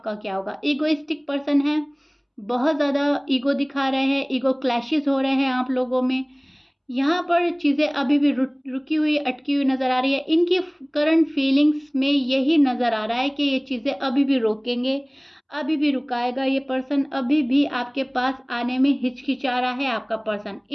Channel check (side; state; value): both; identical; correlation 1.00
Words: का क्या होगा। ईगोइस्टिक पर्सन है, बहुत ज़्यादा ईगो दिखा रहे हैं, ईगो क्लैशेस हो रहे हैं आप लोगों में। यहाँ पर चीज़ें अभी भी रुकी हुई, अटकी हुई नज़र आ रही है। इनकी करंट फीलिंग्स में यही नज़र आ रहा है कि ये चीज़ें अभी भी रोकेंगे, अभी भी रुकाएगा ये पर्सन, अभी भी आपके पास आने में हिचकिचा रहा है आपका पर्सन।